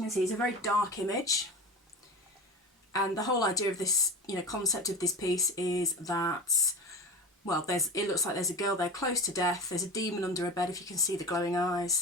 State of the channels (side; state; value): both; normal; correlation 0.30